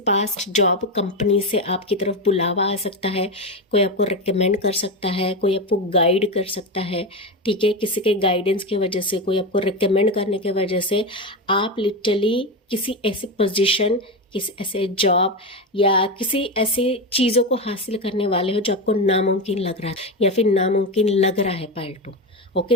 पास्ट जॉब कंपनी से आपकी तरफ बुलावा आ सकता है, कोई आपको रिकमेंड कर सकता है, कोई आपको गाइड कर सकता है, ठीक है। किसी के गाइडेंस की वजह से, कोई आपको रिकमेंड करने की वजह से आप लिटरली किसी ऐसी पोजीशन, किसी ऐसे जॉब या किसी ऐसी चीज़ों को हासिल करने वाले हो जो आपको नामुमकिन लग रहा है या फिर नामुमकिन लग रहा है पाइल 2। ओके,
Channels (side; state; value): both; normal; correlation 0.16